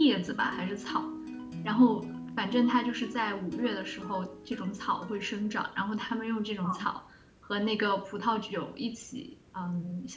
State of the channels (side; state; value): both; identical; correlation 1.00